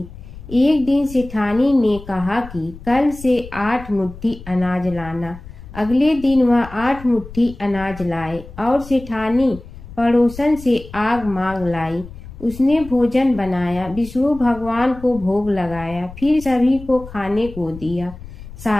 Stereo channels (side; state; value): left; noise; rumble, 15 dB below the sound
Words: एक दिन सेठानी ने कहा कि कल से 8 मुट्ठी अनाज लाना। अगले दिन वह 8 मुट्ठी अनाज लाए और सेठानी पड़ोसन से आग मांग लाई। उसने भोजन बनाया, विष्णु भगवान को भोग लगाया, फिर सभी को खाने को दिया।